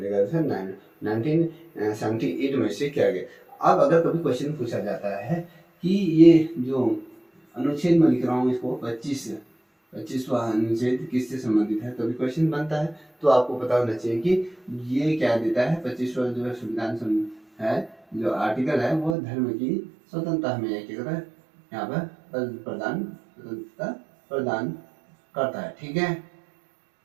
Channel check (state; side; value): drops out; left; at 19.2 s